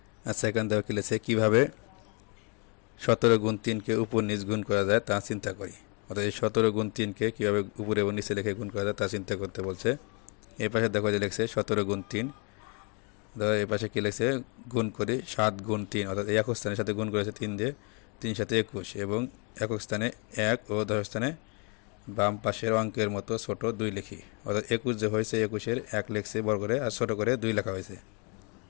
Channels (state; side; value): quieter; right; 34.8 dB